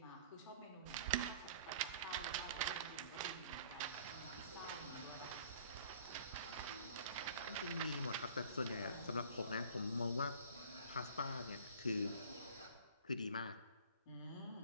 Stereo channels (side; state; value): both; inverted; correlation -0.49